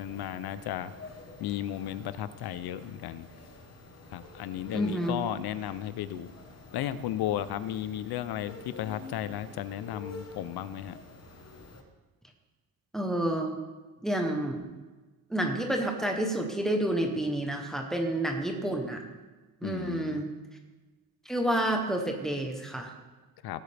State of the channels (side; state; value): both; normal; correlation 0.48